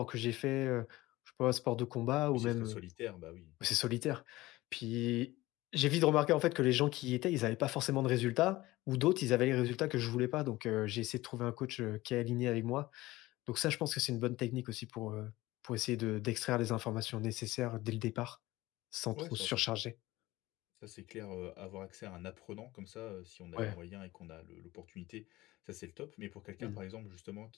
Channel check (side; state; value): right; quieter; 18.6 dB